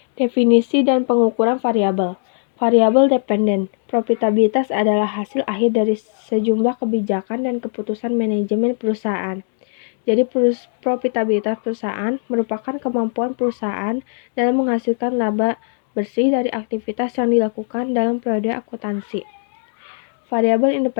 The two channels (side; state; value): right; silent; digital silence